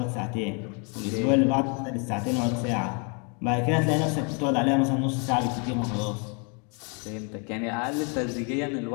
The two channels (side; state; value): right; quieter; 35.7 dB